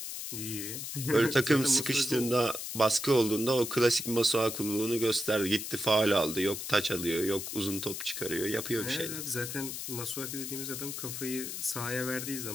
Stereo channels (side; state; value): left; noise; hiss, 6 dB below the sound